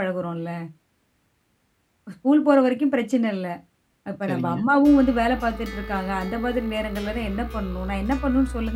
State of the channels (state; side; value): identical; both; correlation 1.00